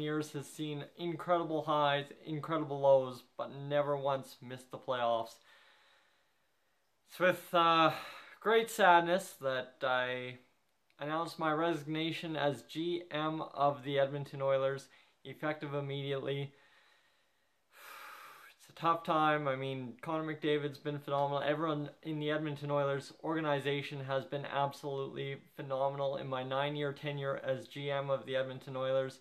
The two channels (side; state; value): both; identical; correlation 1.00